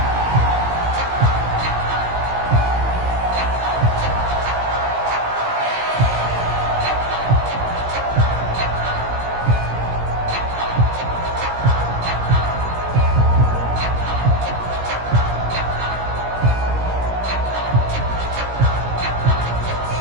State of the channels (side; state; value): left; late; 17 ms